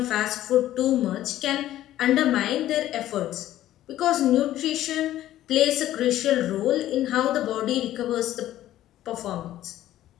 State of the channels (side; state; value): right; quieter; 13.5 dB